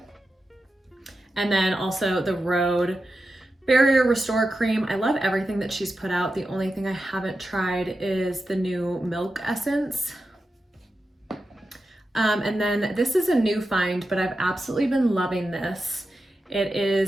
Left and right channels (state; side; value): normal; both; correlation 0.91